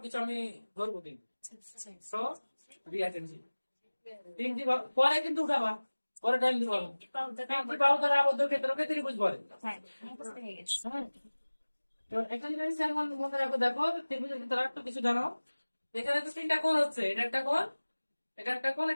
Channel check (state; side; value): inverted; both; correlation -1.00